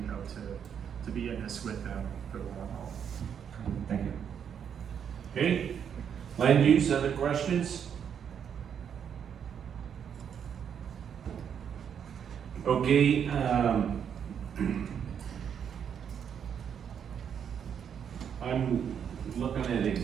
hope to be in this with them for the long haul. Thank you. Okay, land use, other questions? Okay, I'm looking at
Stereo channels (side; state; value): left; quieter; 8.0 dB